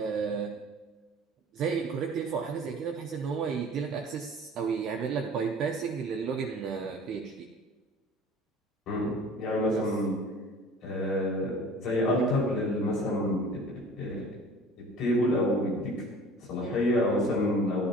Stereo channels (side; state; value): both; normal; correlation 0.45